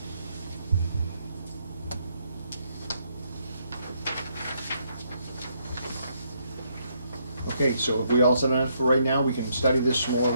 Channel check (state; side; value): inverted; both; correlation -0.74